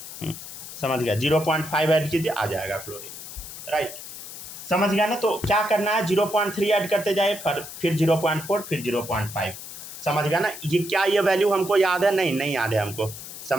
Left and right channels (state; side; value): noise; left; hiss, 12 dB below the sound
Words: समझ गया, 0.5 ऐड कीजिए, आ जाएगा क्लोरीन, राइट। समझ गया ना। तो क्या करना है, 0.3 ऐड करते जाए, फिर 0.4, फिर 0.5। समझ गया ना। ये क्या ये वैल्यू हमको याद है? नहीं याद है हमको।